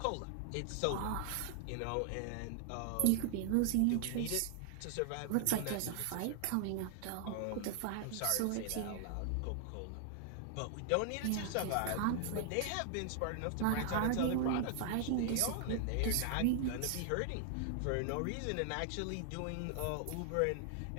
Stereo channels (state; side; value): different; both; correlation 0.00